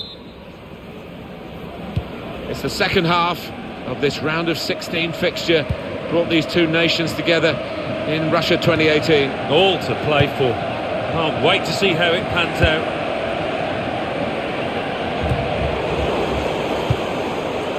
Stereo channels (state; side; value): identical; both; correlation 1.00